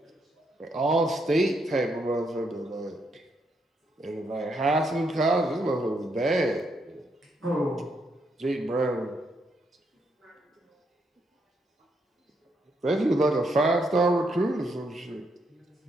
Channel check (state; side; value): normal; both; correlation 0.77